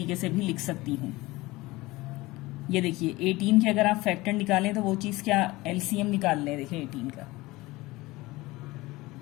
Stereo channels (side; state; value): right; quieter; 20.4 dB